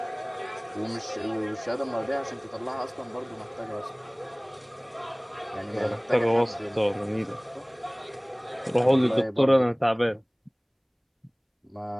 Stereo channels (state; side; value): identical; both; correlation 1.00